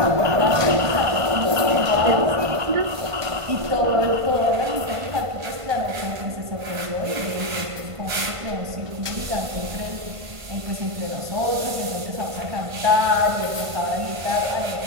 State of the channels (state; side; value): late; left; 1.5 ms